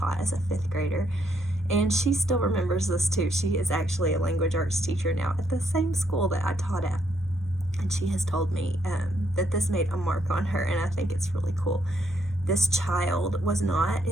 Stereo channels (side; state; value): both; normal; correlation 0.74